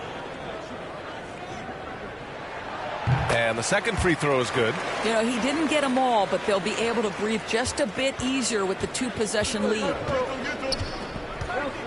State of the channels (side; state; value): both; identical; correlation 1.00